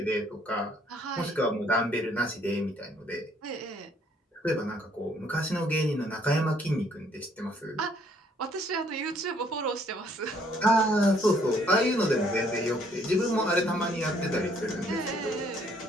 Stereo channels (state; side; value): normal; both; correlation 0.65